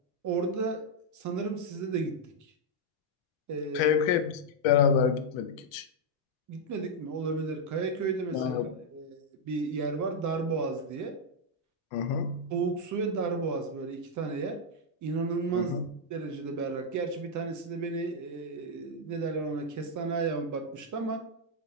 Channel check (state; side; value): normal; both; correlation -0.03